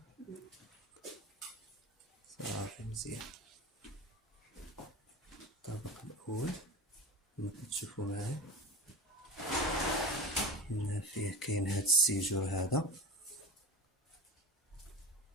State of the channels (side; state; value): both; normal; correlation 0.31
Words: صافي مزيان. الطابق الأول كما كتشوفو معايا. هنا فيه كاين هاد السيجور هذا.